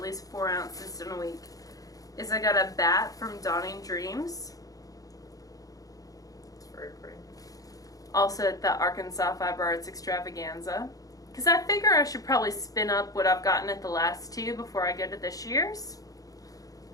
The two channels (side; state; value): right; late; 0.17 ms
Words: least 4 ounces in a week, is I got a bat from Dawning Dreams. It's very pretty. Also at the Arkansas Fiber Arts Extravaganza. Because I figure I should probably spin up what I've gotten at the last two before I go to this year's.